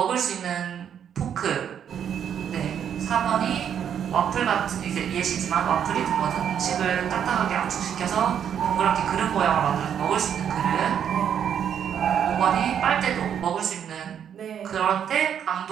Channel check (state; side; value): quieter; left; 8.7 dB